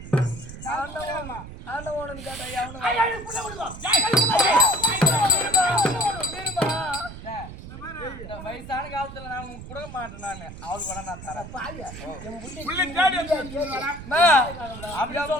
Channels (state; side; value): noise; right; rumble, 13 dB below the sound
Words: அண்ணன் வேணும்னு கேட்டா புள்ள கொடுக்கும் வயசான காலத்துல நான் உனக்கு கொடுக்க மாட்டேன் நானு அவளுக்கு வேணா நான் தரேன்